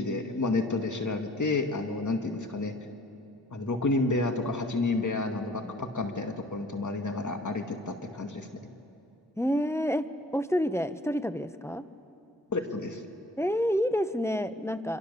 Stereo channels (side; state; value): both; normal; correlation 0.54